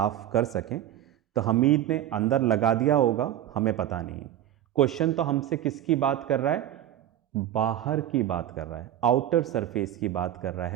कर सकें, तो हमीद ने अंदर लगा दिया होगा, हमें पता नहीं। क्वेश्चन तो हमसे किसकी बात कर रहा है? बाहर की बात कर रहा है, आउटर सरफेस की बात कर रहा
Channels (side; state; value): left; quieter; 11.9 dB